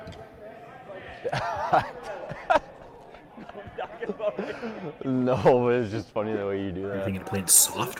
no, but it's just funny the way you do Are you that. thinking of playing soft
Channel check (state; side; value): identical; both; correlation 1.00